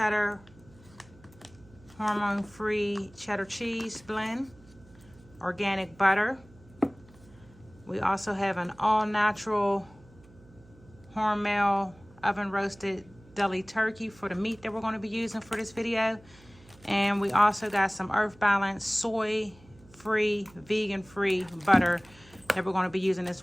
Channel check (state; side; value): noise; right; hum, 25 dB below the sound